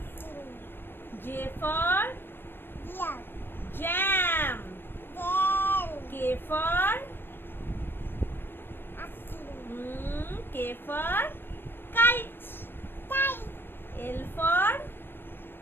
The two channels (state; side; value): late; right; 0.10 ms